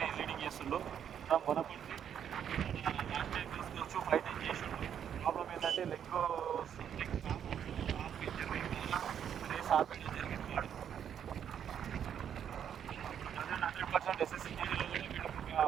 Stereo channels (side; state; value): left; quieter; 8.9 dB